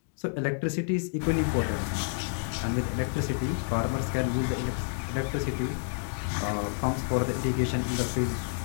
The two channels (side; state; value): right; silent; digital silence